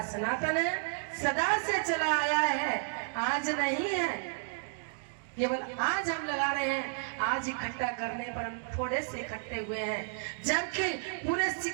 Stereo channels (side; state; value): left; silent; digital silence